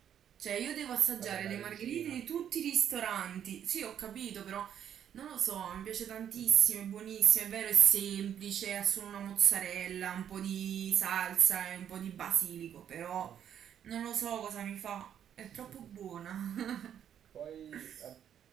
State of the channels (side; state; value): left; quieter; 9.4 dB